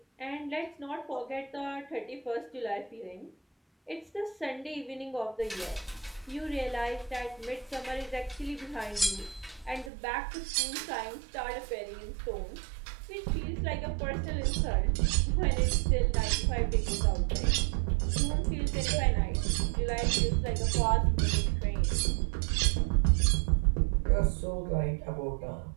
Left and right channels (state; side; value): drops out; left; at 9.9 s